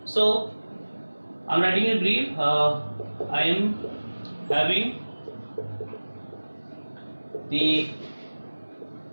So I am writing a brief. I am having the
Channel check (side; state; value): both; inverted; correlation -1.00